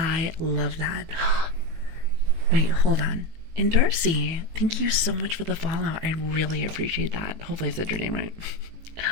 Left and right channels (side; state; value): left; late; 18 ms